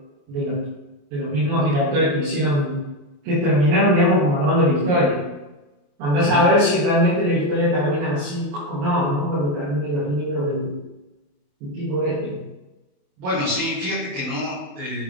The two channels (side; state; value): left; late; 28 ms